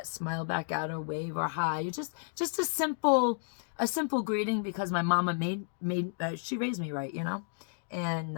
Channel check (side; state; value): right; silent; digital silence